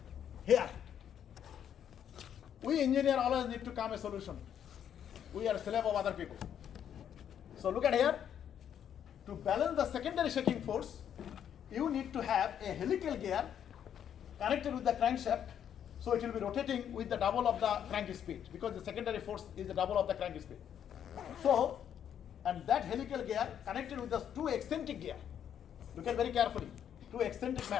Here, we engineer always need to come a solution. We are slave of other people. So look at here. To balance the secondary shaking force, you need to have a helical gear connected with the crankshaft, so it will be rotating with the double of the crank speed, because the secondary force is the double of the crank speed. So, and that helical gear connected with the 2 eccentric gear. Look at very carefully. 2 eccentric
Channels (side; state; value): right; quieter; 9.2 dB